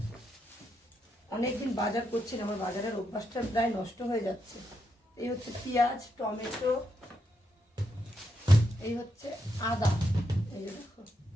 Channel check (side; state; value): both; normal; correlation 0.81